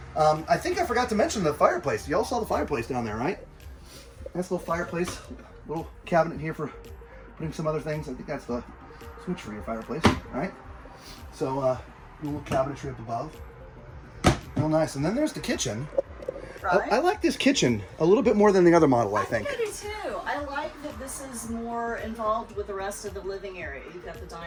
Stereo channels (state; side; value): identical; both; correlation 1.00